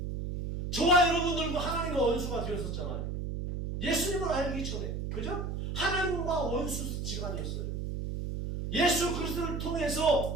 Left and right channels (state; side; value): noise; right; hum, 4 dB below the sound